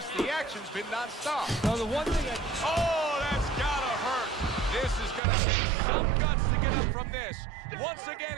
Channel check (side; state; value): left; drops out; at 5.2 s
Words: The action's been nonstop. Now, the one thing Oh, that's gotta hurt. This is gonna take some guts to get up from this. Once again,